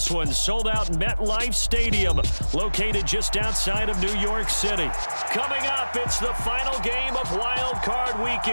one. Sold out MetLife Stadium, located just outside of New York City. Coming up, it's the final game of Wild Card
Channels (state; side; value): inverted; both; correlation -1.00